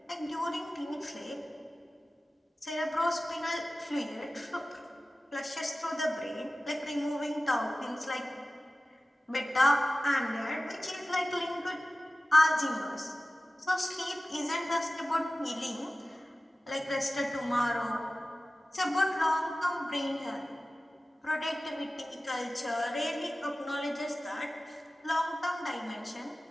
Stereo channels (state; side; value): normal; both; correlation 0.96